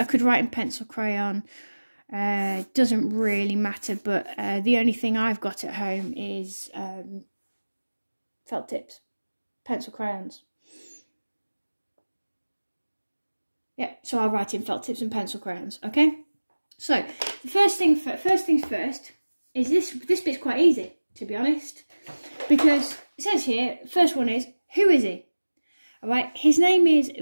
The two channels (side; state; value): both; inverted; correlation -1.00